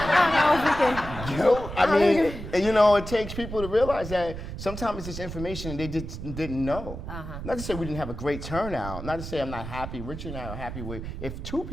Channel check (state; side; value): noise; right; rumble, 9 dB below the sound